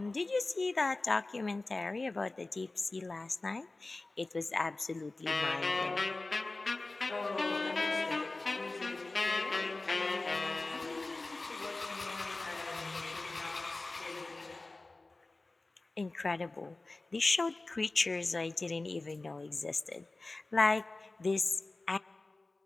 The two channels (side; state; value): right; quieter; 3.2 dB